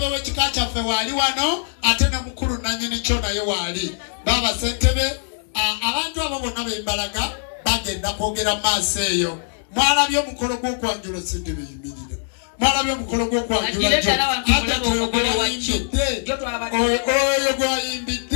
w'ekika kyaffe waali wano ate ne mukulu nannyini kyo naye waali. Baba ssentebe abantu abo bonna bembalaga bagenda kwogera maaso eyo. Mwalabye omukolo gw'okwanjula ssentebe yimirira. Mwalabye omukolo gw'okwanjula oyo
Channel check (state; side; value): silent; right; digital silence